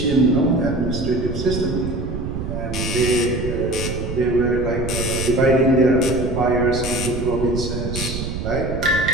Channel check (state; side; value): noise; right; rumble, 5 dB below the sound